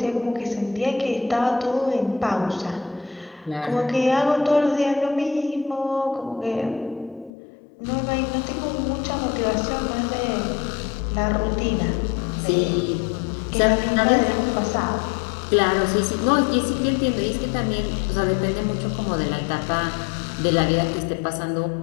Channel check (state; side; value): drops out; right; at 7.3 s